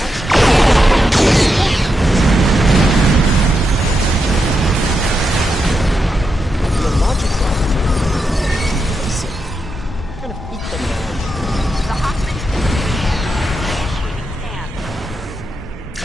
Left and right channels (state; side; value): normal; both; correlation 0.85